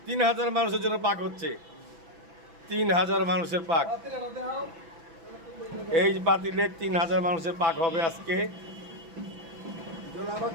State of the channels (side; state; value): left; late; 6.0 ms